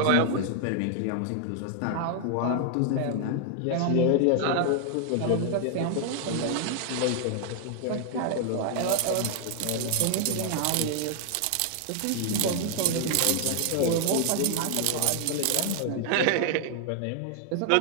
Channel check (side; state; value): both; different; correlation 0.00